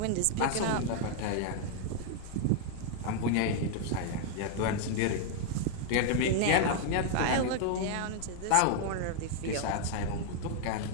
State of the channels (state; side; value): different; both; correlation 0.00